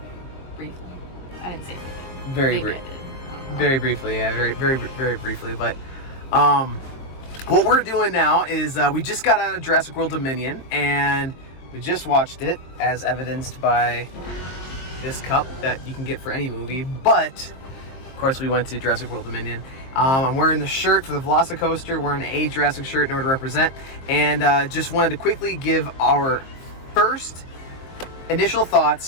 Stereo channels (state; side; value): late; right; 23 ms